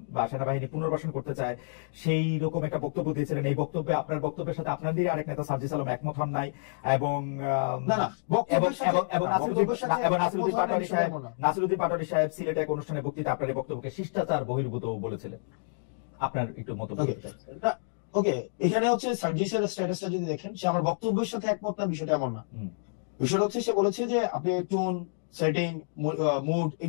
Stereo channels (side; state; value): right; silent; digital silence